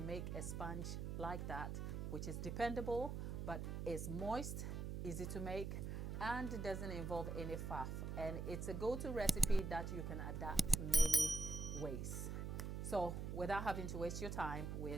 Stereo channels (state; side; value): noise; right; hum, 3 dB below the sound